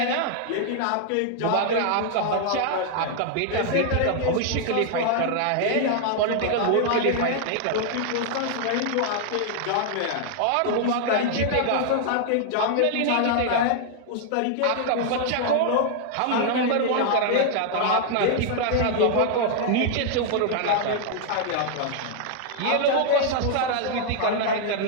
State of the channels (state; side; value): different; both; correlation 0.00